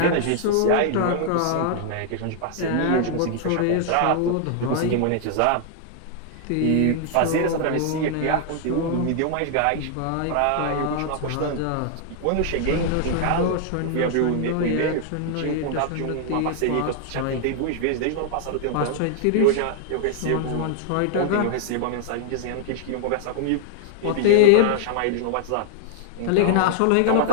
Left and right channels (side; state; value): both; different; correlation 0.00